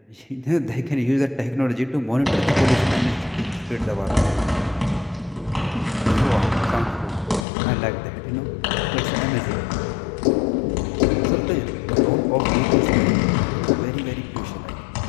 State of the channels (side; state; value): right; drops out; at 7.5 s